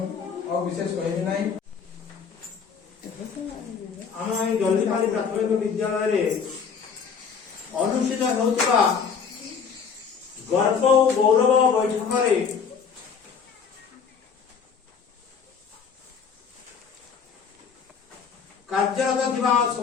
विशेष कहबी ना आम जल्दीपाली प्राथमिक विद्यालय अनुष्ठित होता गर्व और गौरव बैठक कार्यरत थिबा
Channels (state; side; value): quieter; right; 6.3 dB